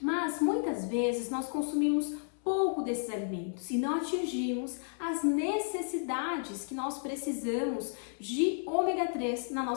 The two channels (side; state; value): right; silent; 56 dB below the other